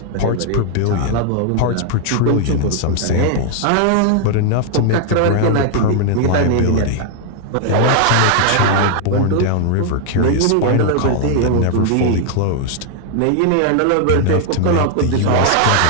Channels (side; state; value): both; different; correlation 0.00